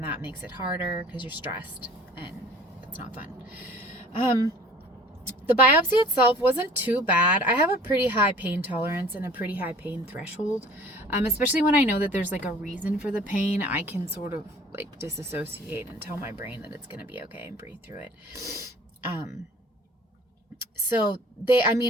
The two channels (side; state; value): both; normal; correlation 0.48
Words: that makes it harder because you're stressed, and it's not fun. The biopsy itself wasn't too bad. I have a pretty high pain tolerance and a pretty high pain threshold, especially when I know that there's like a reason for the pain. I can sort of like disassociate and tell my brain that it's going to be okay and breathe through it. So